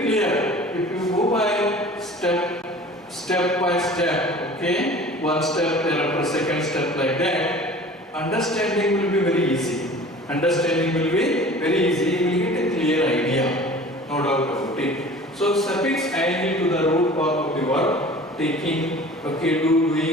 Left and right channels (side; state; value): both; normal; correlation 0.43